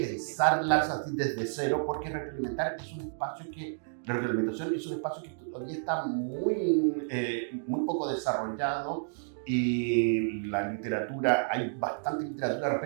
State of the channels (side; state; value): left; silent; digital silence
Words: así desde cero, porque retroalimentar es un espacio que, la retroalimentación es un espacio que todavía está muy poco desarrollado. Y la literatura, hay bastante literatura